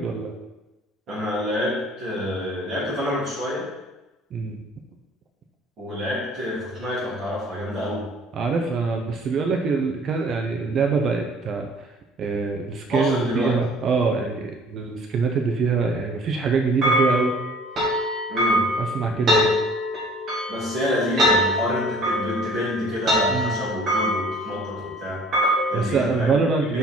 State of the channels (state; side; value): normal; both; correlation 0.53